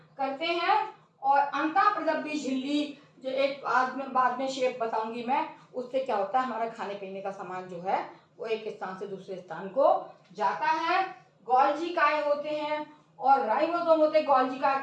करते हैं। और अंतःप्रदब्धी झिल्ली, जो एक बाद में शेप बताऊंगी मैं, उससे क्या होता है, हमारा खाने पीने का सामान जो है वो एक स्थान से दूसरे स्थान को जाता है। गोल्जी काय होते हैं। और राइबोसोम होते हैं गोल्गी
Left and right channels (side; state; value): both; identical; correlation 1.00